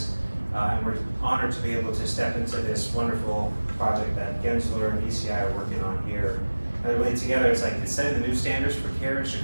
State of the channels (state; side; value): inverted; both; correlation -1.00